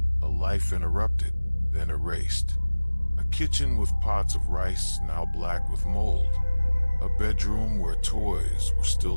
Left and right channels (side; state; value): both; inverted; correlation -1.00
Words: A life interrupted, then erased. A kitchen with pots of rice now black with mold. A bedroom where toys were